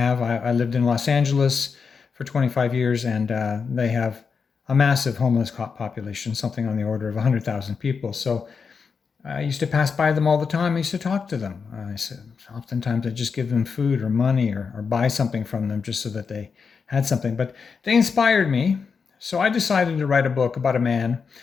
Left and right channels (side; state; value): right; quieter; 5.6 dB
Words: I lived in Los Angeles for 25 years, and they have a massive homeless population, something on the order of 100,000 people. So I used to pass by them all the time. I used to talk to them. I said, oftentimes I just give them food or money or buy something from them just so that they had something. But they inspired me. So I decided to write a book about a man